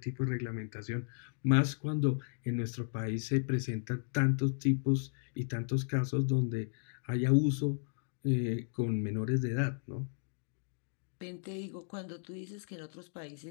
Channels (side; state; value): right; silent; digital silence